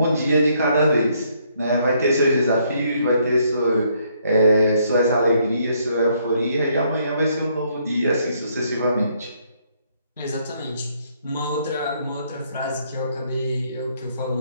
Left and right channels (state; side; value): inverted; both; correlation -0.70